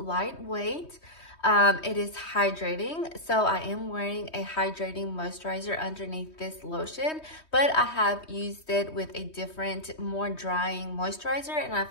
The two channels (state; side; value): late; right; 3.2 ms